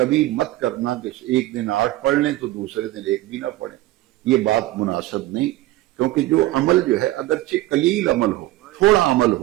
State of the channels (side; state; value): left; quieter; 16.8 dB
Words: مت کرنا کہ ایک دن 8 پڑھ لیں تو دوسرے دن 1 بھی نہ پڑھیں، یہ بات مناسب نہیں، کیونکہ جو عمل جو ہے اگرچہ قلیل عمل ہو، تھوڑا عمل